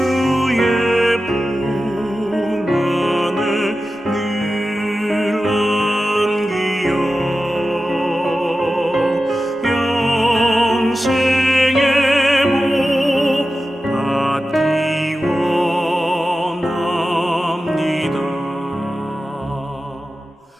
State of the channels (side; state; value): both; normal; correlation 0.93